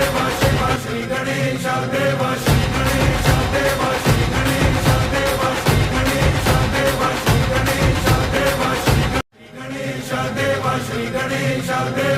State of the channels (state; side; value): identical; both; correlation 1.00